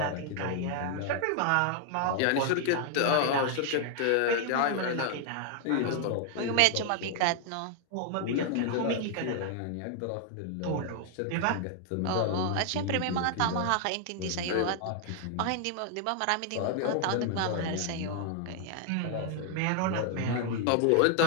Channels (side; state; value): both; different; correlation 0.00